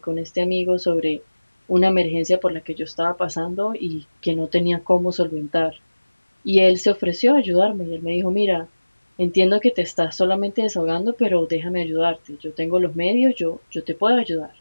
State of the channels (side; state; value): both; inverted; correlation -1.00